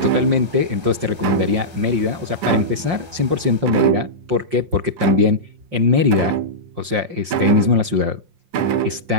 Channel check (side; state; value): left; late; 5.6 ms